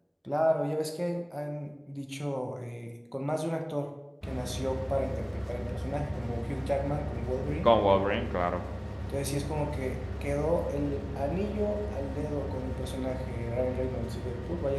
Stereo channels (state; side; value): identical; both; correlation 1.00